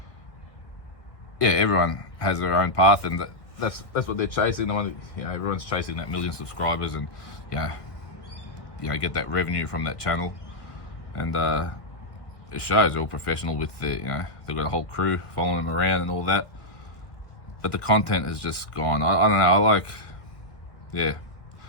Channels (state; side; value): late; right; 1.7 ms